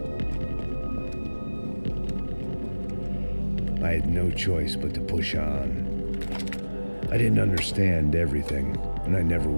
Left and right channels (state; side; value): inverted; both; correlation -1.00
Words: I had no choice but to push on. I didn't understand everything, and I never